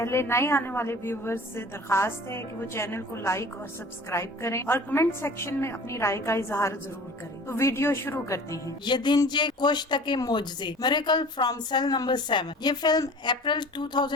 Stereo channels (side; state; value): both; normal; correlation 0.44